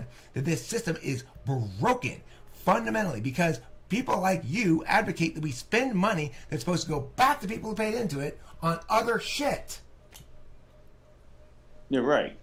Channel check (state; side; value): identical; both; correlation 1.00